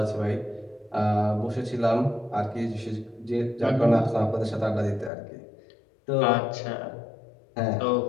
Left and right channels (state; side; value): drops out; right; at 5.1 s